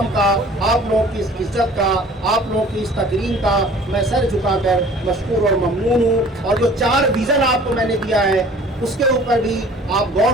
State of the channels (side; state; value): both; normal; correlation 0.49